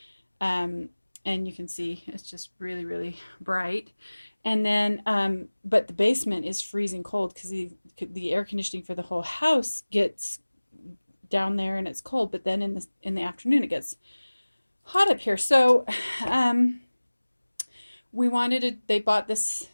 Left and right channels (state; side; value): inverted; both; correlation -1.00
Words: Um, and you can see it's just really, really bright. And then, but the basement is freezing cold because the air conditioning for the whole house gets down there and it's cold, but then in the afternoon it gets hot up here. So they bought this